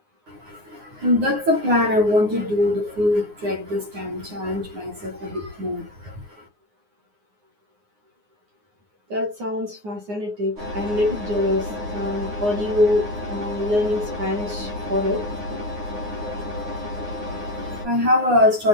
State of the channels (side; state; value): left; late; 9.6 ms